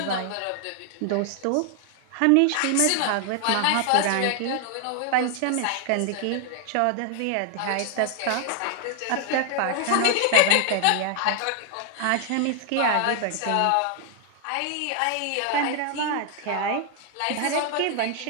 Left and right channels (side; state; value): both; different; correlation 0.00